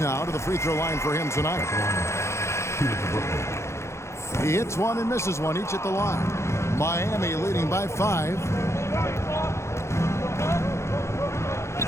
to the free throw line for him tonight. He hits one and misses one, each at the line. Miami leading by 5.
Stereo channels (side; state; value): right; late; 0.13 ms